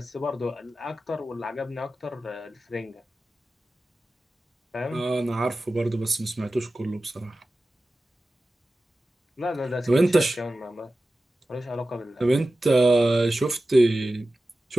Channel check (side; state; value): both; normal; correlation 0.95